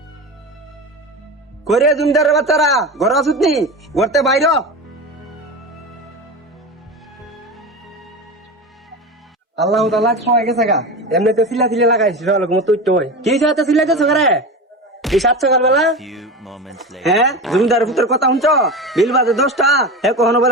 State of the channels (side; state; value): both; normal; correlation 0.25